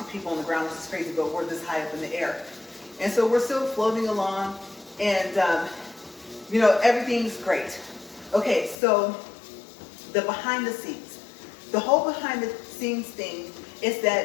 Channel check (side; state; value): right; drops out; at 8.8 s